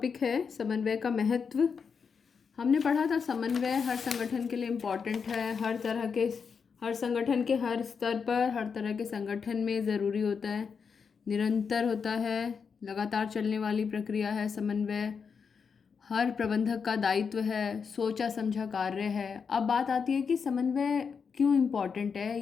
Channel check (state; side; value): quieter; right; 6.0 dB